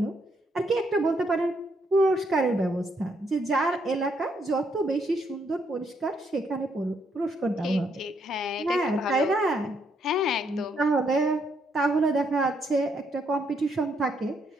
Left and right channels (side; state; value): both; normal; correlation 0.74